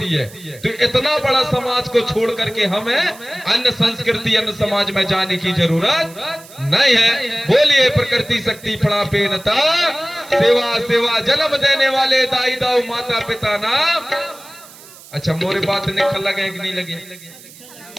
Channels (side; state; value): right; noise; hiss, 20 dB below the sound